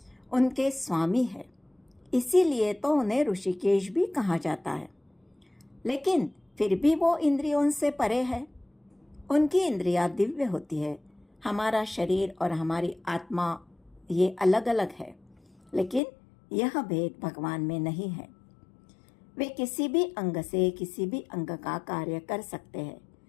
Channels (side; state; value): right; drops out; at 16.0 s